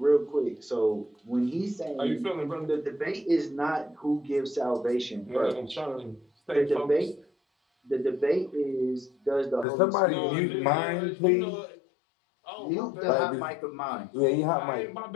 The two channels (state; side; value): drops out; right; at 9.7 s